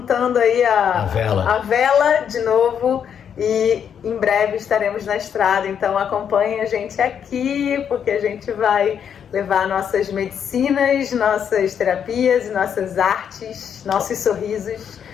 aí a vela de novo, e em breve estaremos na estrada. Então acompanhe a gente aqui, porque a gente vai levar nossas medicinas, nossas terapias, nossas artes, nossos sorrisos.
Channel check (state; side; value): quieter; right; 8.1 dB